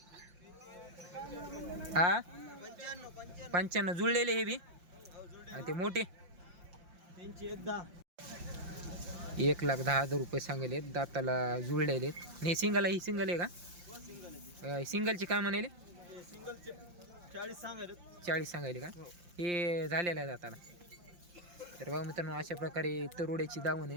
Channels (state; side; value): late; left; 5.7 ms